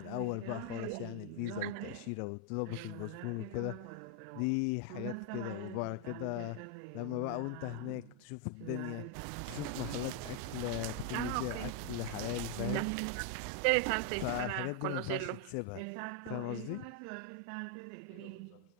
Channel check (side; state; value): both; different; correlation 0.00